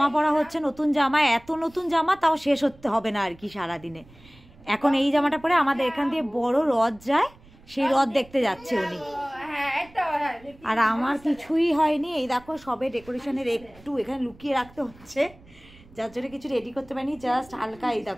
পরা হচ্ছে, নতুন জামা, এত নতুন জামা তাও শেষ হতে হবে না আর কি সারাদিনে। এখন এই জামাটা পরে আমাদের এখান দিয়ে বড় রথ যায়, সেই রথ দেখতে যাচ্ছে উনি। আর আমার কিছুই হয়নি, এই দেখো সবে ডেকোরেশনের একটু এখানে লুকিয়ে রাখতে হচ্ছে, যার জন্য কিছু রেডি করতে পারিনি, জাস্ট হালকা এই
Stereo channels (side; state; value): right; noise; rumble, 24 dB below the sound